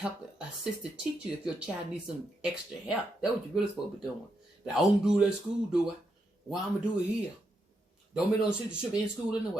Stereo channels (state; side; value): normal; both; correlation 0.82